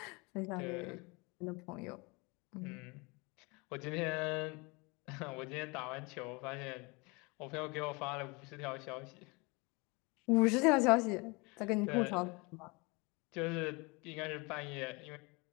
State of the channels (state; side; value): quieter; right; 27.7 dB